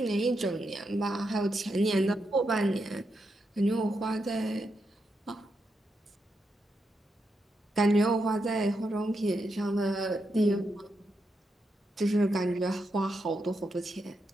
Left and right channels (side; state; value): both; normal; correlation 0.84